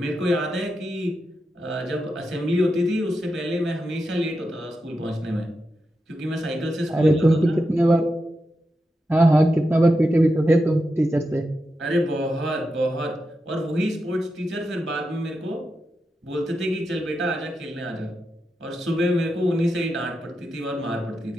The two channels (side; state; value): both; normal; correlation 0.88